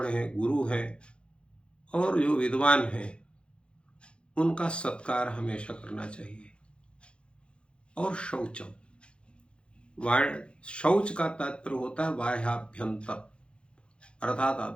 है, गुरु है और जो विद्वान है, उनका सत्कार हमेशा करना चाहिए। और शौचम, शौच का तात्पर्य होता है बाह्याभ्यंतर, अर्थात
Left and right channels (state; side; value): late; right; 0.057 ms